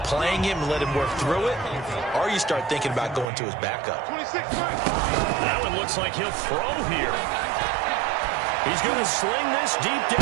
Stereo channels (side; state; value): left; drops out; at 3.2 s